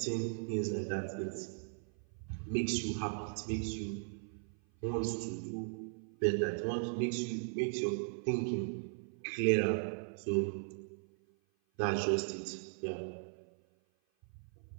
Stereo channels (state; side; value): silent; left; 53 dB below the other